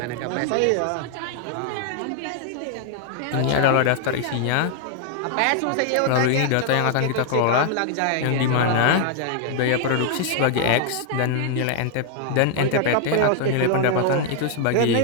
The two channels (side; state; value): both; different; correlation 0.00